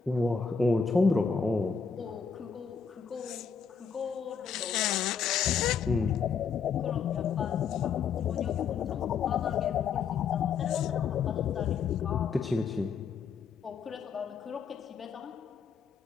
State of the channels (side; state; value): right; quieter; 6.1 dB